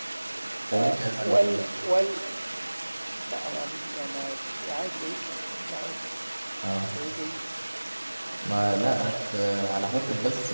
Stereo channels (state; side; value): inverted; both; correlation -1.00